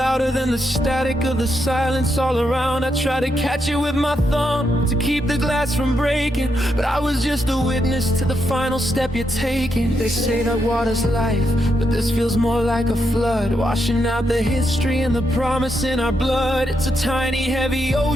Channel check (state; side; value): normal; both; correlation 0.81